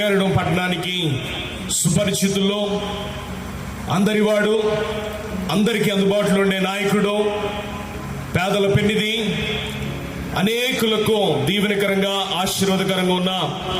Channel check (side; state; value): both; identical; correlation 1.00